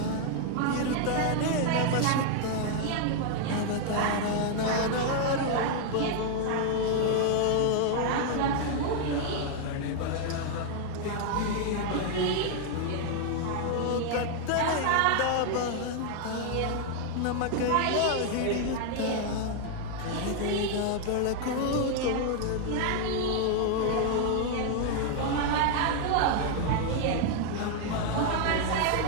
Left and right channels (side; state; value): both; different; correlation 0.00